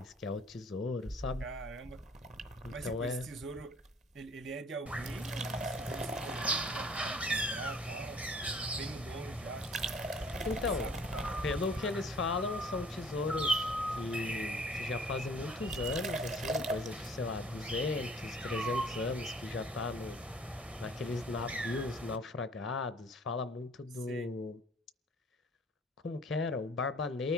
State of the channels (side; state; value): both; normal; correlation 0.54